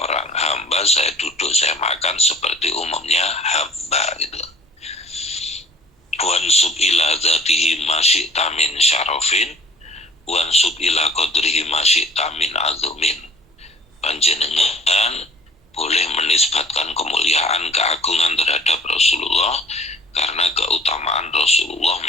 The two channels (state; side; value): normal; both; correlation 0.52